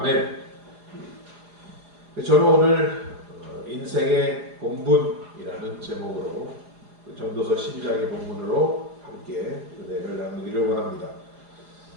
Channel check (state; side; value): late; left; 4.9 ms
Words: 저는 오늘 인생의 본분이라는 제목으로 전도서 12장의 본문으로 함께 은혜를 나누기를 원합니다.